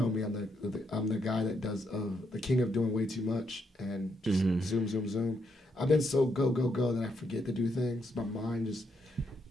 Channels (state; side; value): normal; both; correlation 0.77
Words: me, I'm the guy that does the king of doing way too much and just zoom. I've been so go that I forget to do things. My mind